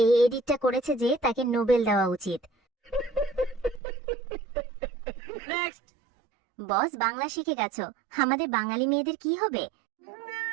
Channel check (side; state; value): left; drops out; at 3.8 s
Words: এডিটটা করেছে যে, তাকে নোবেল দেওয়া উচিত। বস, বাংলা শিখে গেছো, আমাদের বাঙালি মেয়েদের কি হবে?